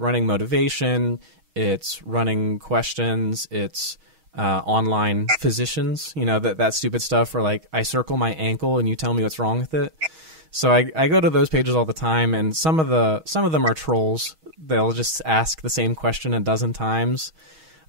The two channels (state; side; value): late; left; 6.3 ms